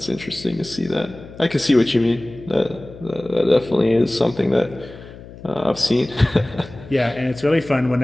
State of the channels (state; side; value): noise; left; hum, 17 dB below the sound